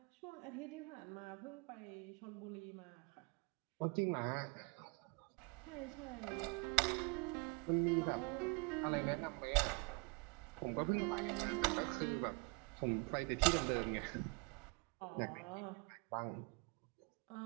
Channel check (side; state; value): left; quieter; 28.1 dB